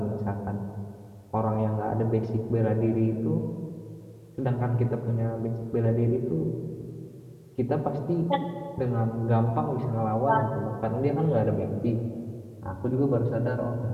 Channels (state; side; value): identical; both; correlation 1.00